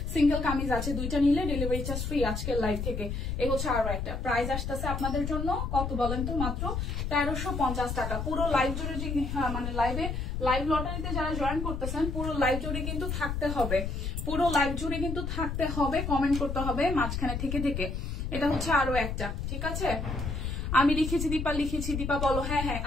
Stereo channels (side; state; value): left; noise; rumble, 3 dB below the sound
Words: সিঙ্গেল কামিজ আছে, দুইটা নিলে ডেলিভারি চার্জ ফ্রি আজকের লাইভ থেকে। এই হচ্ছে আরো একটা। প্রাইস আসতেছে আপনাদের জন্য কত বলেন তো? মাত্র 1350 টাকা। পুরো লাইভ জুড়ে যে মানে লাইভ লটারিতে যারা জয়েন করতেছেন, পুরো লাইভ জুড়ে কিন্তু থাকতে হবে, পুরো লাইভ জুড়ে কিন্তু থাকতে হবে, কমেন্ট করতে হবে মাঝখানে থেকে থেকে। এটা হচ্ছে আরো একটা, ঠিক আছে? আমি লিখেছি দীপা, লিখেছি দীপা বলো। হ্যাঁ হ্যাঁ,